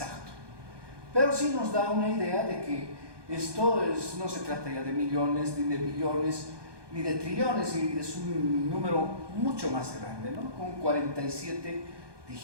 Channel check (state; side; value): late; left; 1.2 ms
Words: Pero sí nos da una idea de que esto no se trata ya de millones, ni de billones, ni de trillones, y es un número mucho más grande, ¿no? Con 47